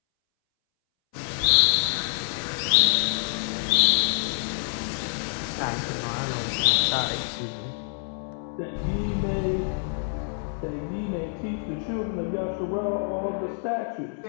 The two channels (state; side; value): silent; right; 61 dB below the other